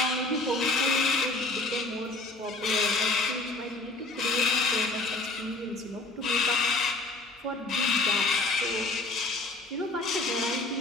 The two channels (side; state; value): right; quieter; 3.1 dB